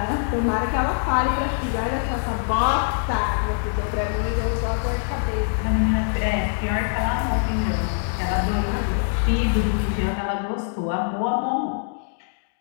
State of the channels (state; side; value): silent; right; digital silence